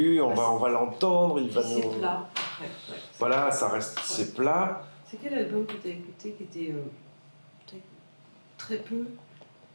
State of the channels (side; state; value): both; inverted; correlation -1.00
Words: on va l'entendre, il va nous... C'est plat. Ouais, voilà, ça reste, c'est plat. C'est quel album que tu as écouté qui était peut-être très peu,